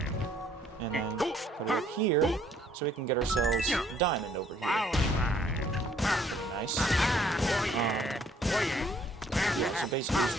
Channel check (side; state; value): both; normal; correlation 0.63